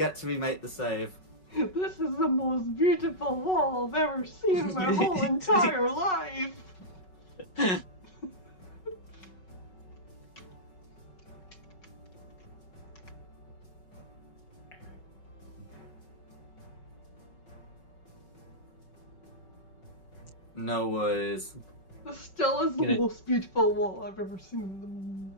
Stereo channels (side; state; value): right; late; 5.4 ms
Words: to remake the save. This is the most beautiful wall I've ever seen in my whole entire life. No worries. This still is the most beautiful wall I've ever seen in